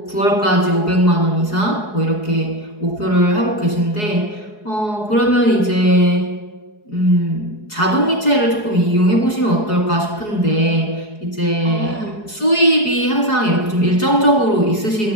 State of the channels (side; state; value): right; late; 4.7 ms